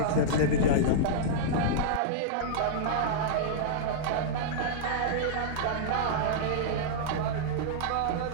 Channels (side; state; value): both; different; correlation -0.02